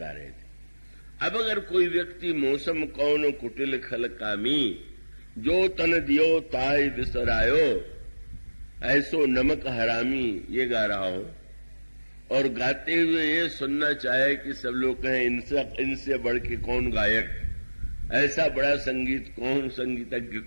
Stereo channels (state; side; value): inverted; both; correlation -1.00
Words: रहे थे। अब अगर कोई व्यक्ति मौसम कौन कुटिल खल कामी, जो तन दियो ताय बिसरायो, ऐसो नमक हरामी, ये गा रहा हो और गाते हुए ये सुनना चाहे कि सब लोग कहें इनसे बढ़ के कौन गायक, ऐसा बड़ा संगीत कौन, संगीतज्ञ